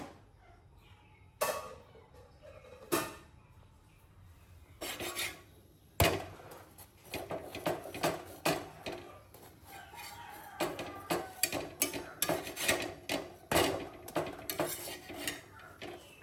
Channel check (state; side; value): identical; both; correlation 1.00